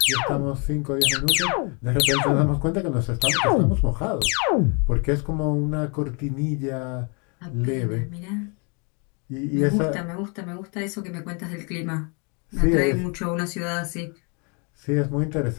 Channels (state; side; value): quieter; right; 34.5 dB